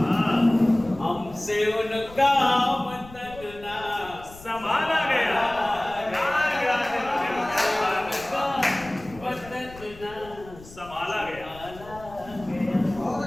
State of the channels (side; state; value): left; noise; rumble, 19 dB below the sound